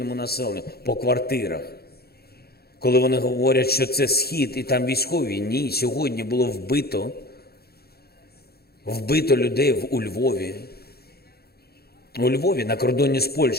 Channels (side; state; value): right; late; 0.46 ms